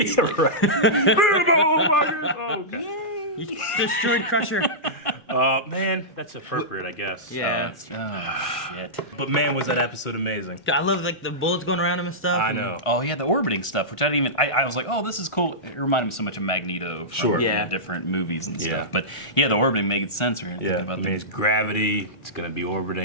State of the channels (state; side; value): late; right; 1.4 ms